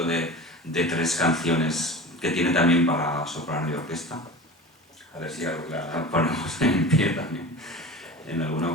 de 3 canciones que tiene también para soprano y orquesta. A ver si algo la ponemos en pie también en alguna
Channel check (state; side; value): normal; both; correlation 0.34